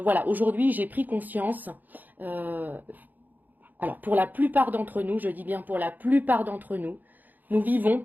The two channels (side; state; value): left; late; 0.085 ms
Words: aujourd'hui j'ai pris conscience, euh, alors pour la plupart d'entre nous, je dis bien pour la plupart d'entre nous, nous vivons